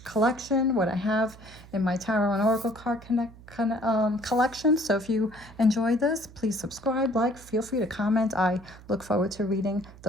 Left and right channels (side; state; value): right; noise; hum, 20 dB below the sound